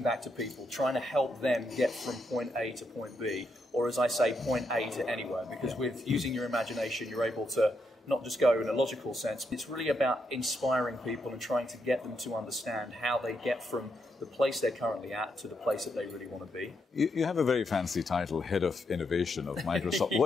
back to people, trying to help them get from point A to point B, or as I say, point A to anywhere, because with using your imagination, you're able to not just go in a logical sense. It's really about inspiring people and trying to get them to understand how they get from the place they're currently at to the place that they really want to be. You have a very fancy title, Head of Innovation of Microsoft.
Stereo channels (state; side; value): normal; both; correlation 0.80